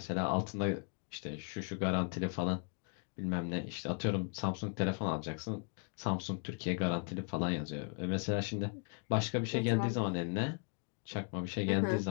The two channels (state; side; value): quieter; right; 37.4 dB